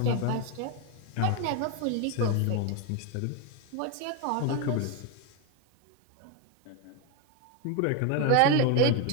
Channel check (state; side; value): different; both; correlation 0.01